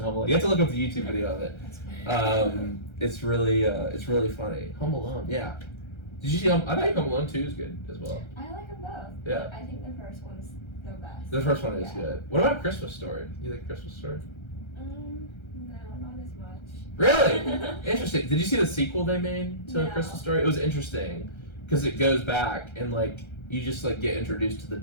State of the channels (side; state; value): right; late; 1.3 ms